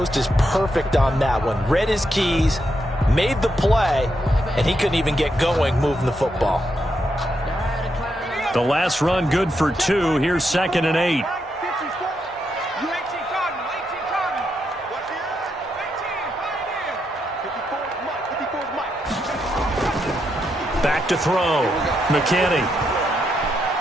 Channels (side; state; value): both; normal; correlation 0.81